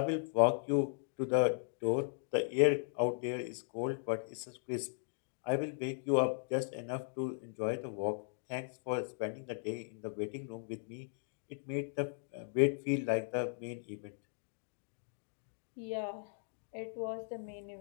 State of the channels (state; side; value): silent; right; digital silence